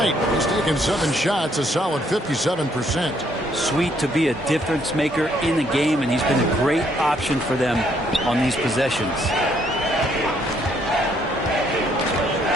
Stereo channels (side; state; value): both; normal; correlation 0.69